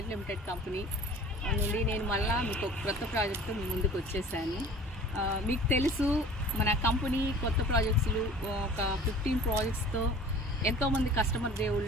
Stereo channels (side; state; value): both; normal; correlation 0.44